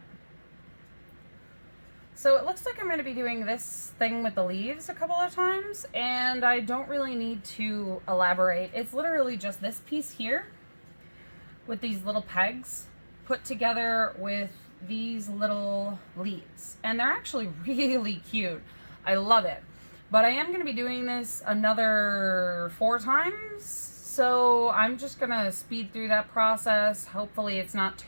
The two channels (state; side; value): inverted; both; correlation -1.00